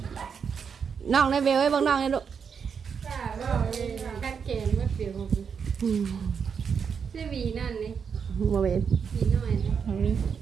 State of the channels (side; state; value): left; quieter; 6.6 dB